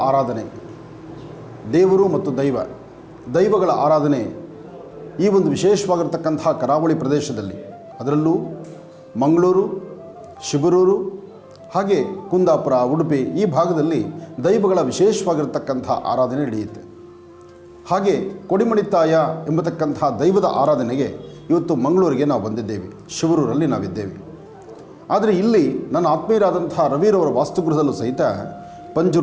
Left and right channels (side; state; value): both; identical; correlation 1.00